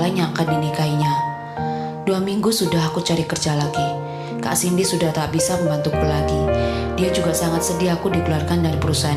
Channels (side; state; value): both; identical; correlation 1.00